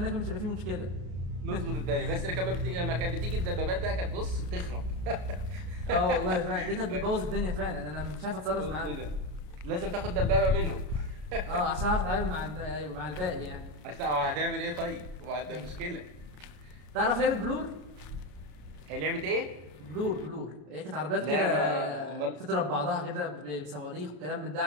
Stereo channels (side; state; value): left; late; 33 ms